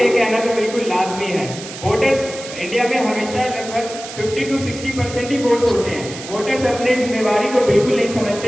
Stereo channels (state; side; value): noise; right; hiss, 12 dB below the sound